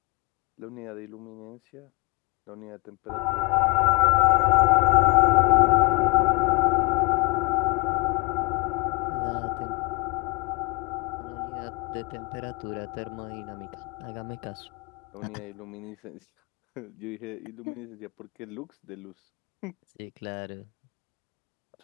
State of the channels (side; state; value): right; quieter; 29.6 dB